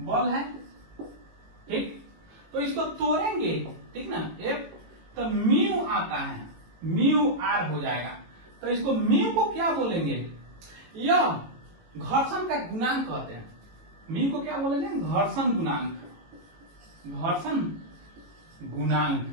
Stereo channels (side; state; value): left; late; 18 ms